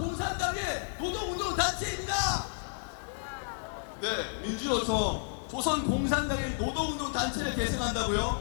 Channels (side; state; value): right; silent; digital silence